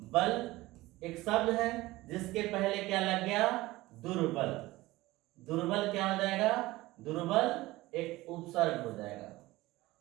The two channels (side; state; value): left; quieter; 18.8 dB